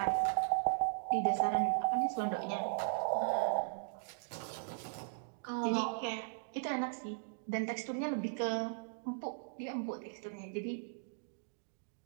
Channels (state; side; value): silent; left; digital silence